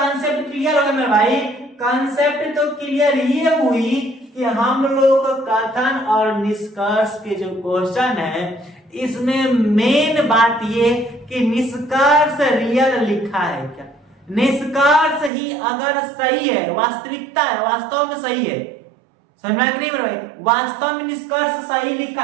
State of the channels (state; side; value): drops out; left; at 15.3 s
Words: क्लियर हो गया मेरे भाई। कॉन्सेप्ट तो क्लियर ये हुई कि हम लोग कथन और निष्कर्ष के जो क्वेश्चन है इसमें मेन बात ये कि निष्कर्ष रियल लिखा है क्या। निष्कर्ष ही अगर सही है, वास्तविकता है, वास्तव में सही है, समझ में नहीं मेरे भाई, वास्तव में निष्कर्ष सही लिखा